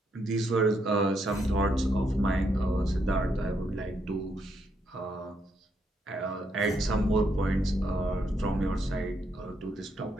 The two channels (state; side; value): normal; both; correlation 0.76